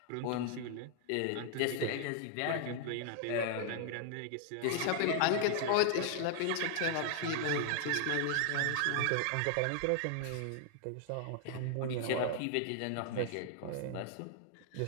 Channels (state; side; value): different; both; correlation 0.00